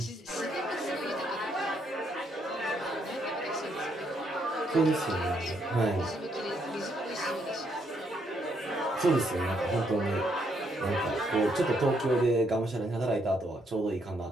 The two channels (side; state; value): both; normal; correlation 0.74